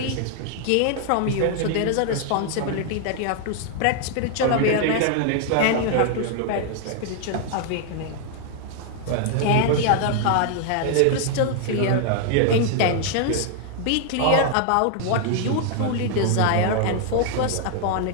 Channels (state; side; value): different; both; correlation 0.00